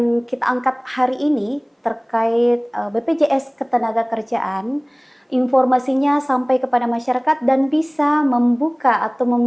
kita angkat hari ini terkait BPJS Ketenagakerjaan, informasinya sampai kepada masyarakat dan bisa membuka atau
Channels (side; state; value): both; identical; correlation 1.00